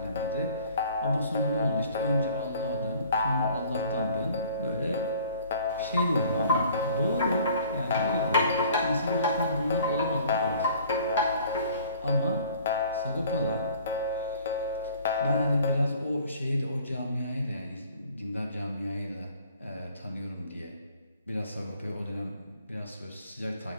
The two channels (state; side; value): inverted; both; correlation -0.53